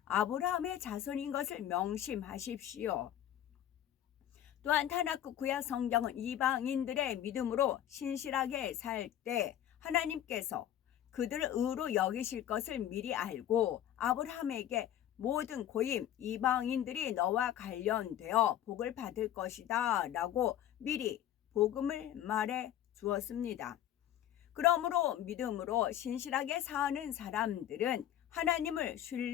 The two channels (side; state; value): right; quieter; 11.4 dB